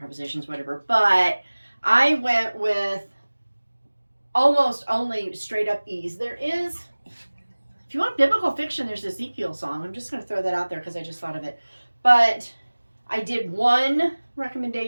whatever. But I went with almost only straight up E's. There is, if you want biblical fiction, there's Ezekiel song. I'm just going to throw that out there because I just thought of it. But I did one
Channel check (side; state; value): both; inverted; correlation -1.00